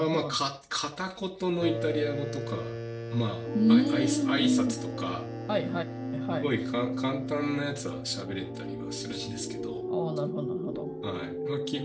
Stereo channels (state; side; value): identical; both; correlation 1.00